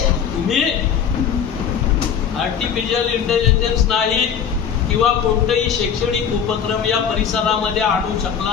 तुम्ही आर्टिफिशियल इंटेलिजन्स नाही किंवा कोणतेही शैक्षणिक उपक्रम या परिसरामध्ये आणू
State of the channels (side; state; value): right; quieter; 7.8 dB